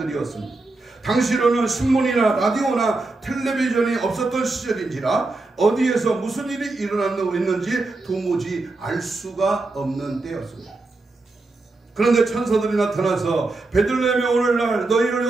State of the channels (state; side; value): quieter; left; 3.3 dB